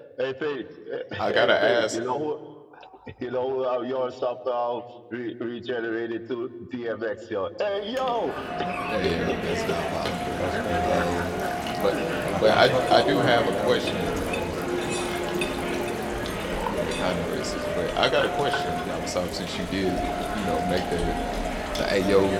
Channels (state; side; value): identical; both; correlation 1.00